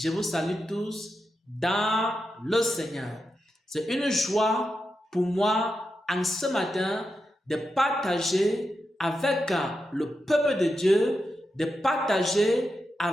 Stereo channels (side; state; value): both; normal; correlation 0.88